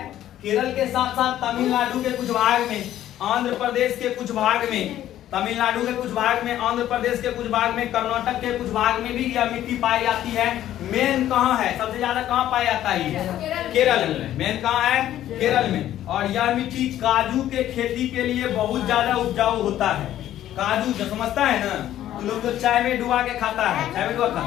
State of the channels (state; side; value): quieter; right; 12.4 dB